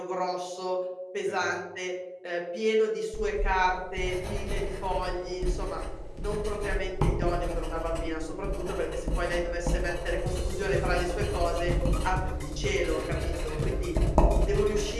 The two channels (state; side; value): identical; both; correlation 1.00